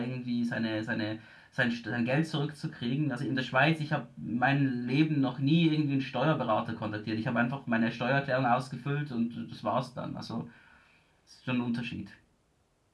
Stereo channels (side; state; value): both; identical; correlation 1.00